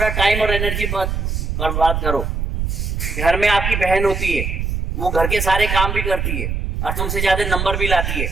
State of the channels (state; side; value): noise; right; rumble, 2 dB below the sound